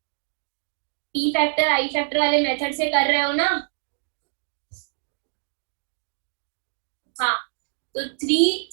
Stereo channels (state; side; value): silent; left; 62 dB below the other